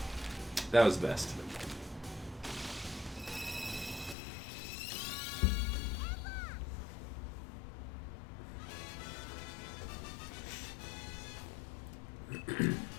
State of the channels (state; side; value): drops out; right; at 4.2 s